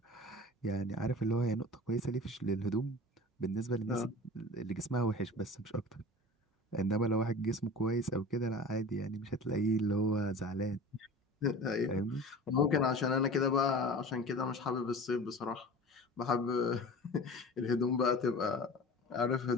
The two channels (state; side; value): normal; both; correlation 0.38